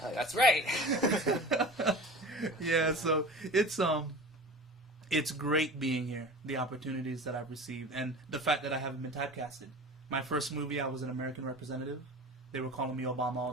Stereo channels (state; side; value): normal; both; correlation 0.36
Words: That's right. Yeah, so it's great being here, the opportunities that I've received, and the fact that I haven't been typecasted. My first movie, I was an American representative. They were calling me Obama all